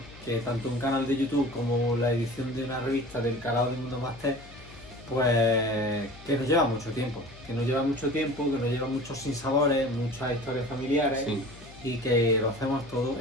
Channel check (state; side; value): noise; left; hum, 20 dB below the sound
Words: que tanto un canal de YouTube como la edición de una revista del calado de Mundo Máster, pues que nos lleva mucho tiempo. Que nos lleva muchos sinsabores, muchas historias familiares. Sí. Y que lo hacemos todo